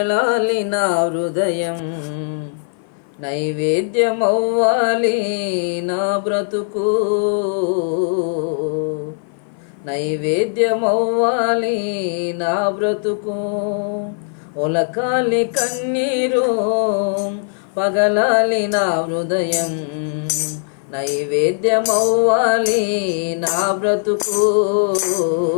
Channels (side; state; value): right; silent; 56 dB below the other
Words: నా హృదయం, నైవేద్యమవ్వాలి నా బ్రతుకు, నైవేద్యమవ్వాలి నా బ్రతుకు. ఒలకాలి కన్నీరు పగలాలి నా హృదయం, నైవేద్యమవ్వాలి నా బ్రతుకు,